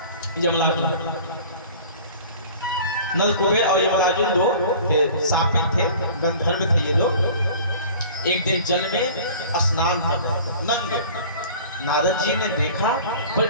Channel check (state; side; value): inverted; both; correlation -0.44